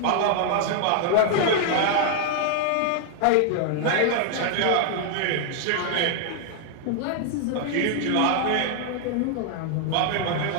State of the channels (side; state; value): both; different; correlation 0.00